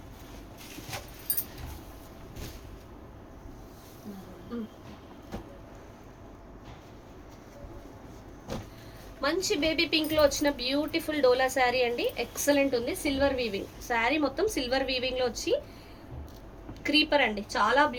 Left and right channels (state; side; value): identical; both; correlation 1.00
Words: మంచి బేబీ పింక్ లో వచ్చిన బ్యూటిఫుల్ డోలా శారీ అండి, ఎక్సలెంట్ ఉంది. సిల్వర్ వీవింగ్ శారీ మొత్తం సిల్వర్ వీవింగ్ లో వచ్చి క్రీపర్ అండి, చాలా